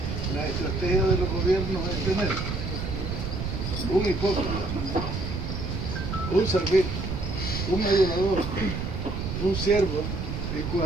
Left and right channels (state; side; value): noise; right; rumble, 4 dB below the sound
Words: la estrategia de los gobiernos es tener un hipócrita, un servil, un adulador, un siervo, y